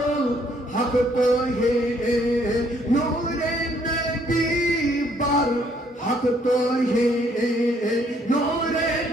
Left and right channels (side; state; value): both; normal; correlation 0.66